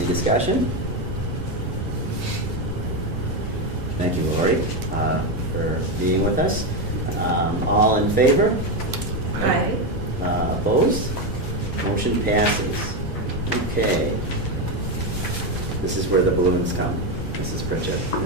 discussion? Thank you, Lori, for being with us. All in favor? Aye. Opposed? Motion passes. Okay. This is where the balloons come. Mrs. Pritchett,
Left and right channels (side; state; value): both; normal; correlation 0.10